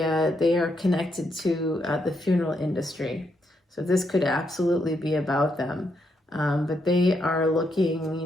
are connected to the funeral industry. So this could absolutely be about them. But they are looking,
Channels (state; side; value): normal; both; correlation 0.79